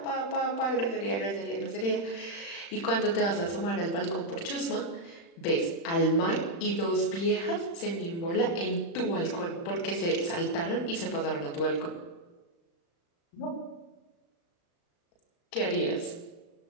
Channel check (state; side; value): late; right; 35 ms